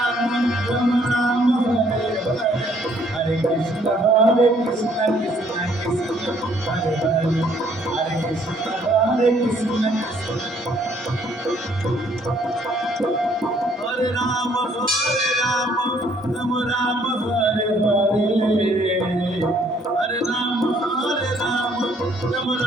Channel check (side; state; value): both; normal; correlation 0.64